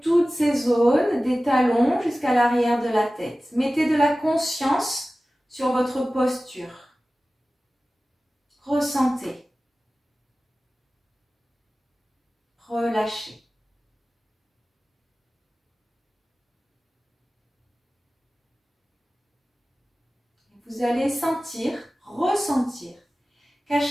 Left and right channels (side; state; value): both; normal; correlation 0.96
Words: toutes ces zones, des talons jusqu'à l'arrière de la tête. Mettez de la conscience sur votre posture. Ressentez. Relâchez. Vous allez sentir, ressentir qu'à